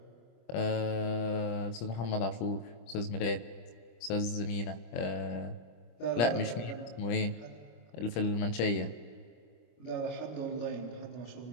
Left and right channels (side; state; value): right; late; 25 ms